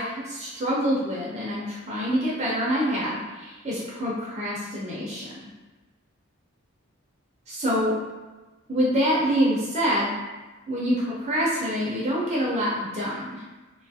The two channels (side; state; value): both; normal; correlation 0.45